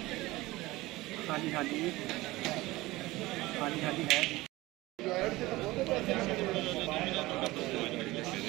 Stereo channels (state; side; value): quieter; left; 19.5 dB